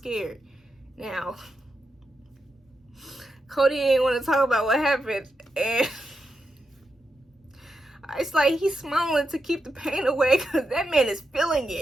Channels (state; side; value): normal; both; correlation 0.86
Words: Now, Cody didn't want to talk about what happened, and it's like he's smiling to keep the pain away, because that man is feeling